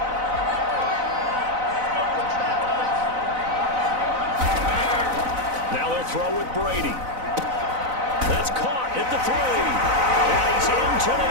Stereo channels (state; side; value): late; left; 4.0 ms